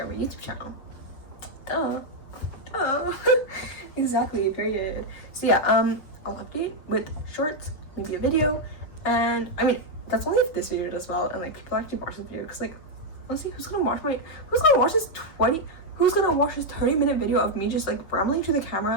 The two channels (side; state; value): right; late; 6.0 ms